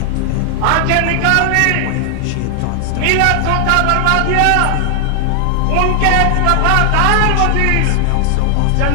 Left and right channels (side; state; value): both; different; correlation 0.00